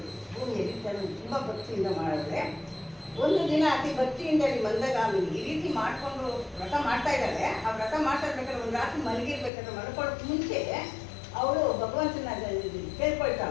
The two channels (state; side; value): drops out; right; at 9.5 s